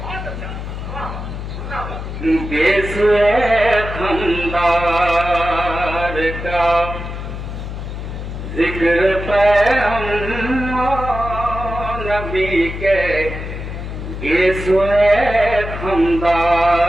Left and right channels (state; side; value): noise; left; hum, 7 dB below the sound